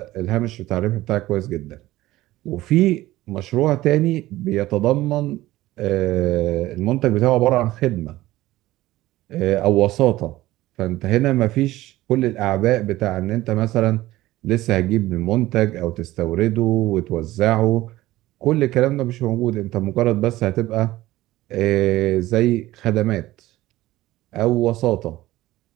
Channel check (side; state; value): left; quieter; 16.8 dB